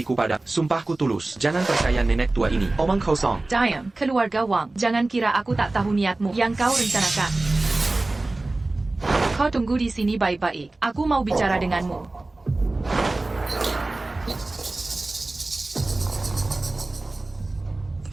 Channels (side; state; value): left; quieter; 3.0 dB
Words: pada, sumpahku tulus. Jangan percaya nenek tua ini. Omong kosong. Diam, keluarga Wang. Jangan kira aku tak tahu niatmu yang kau rencanakan. Kau tunggu di sini baik-baik. Aku mau bicara denganmu.